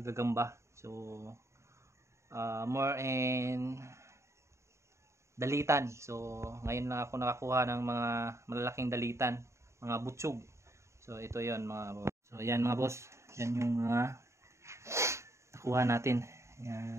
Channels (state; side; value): late; left; 0.14 ms